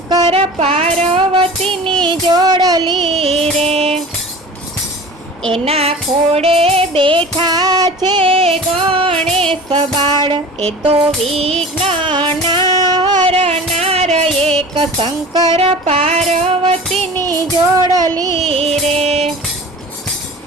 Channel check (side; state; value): both; normal; correlation 0.38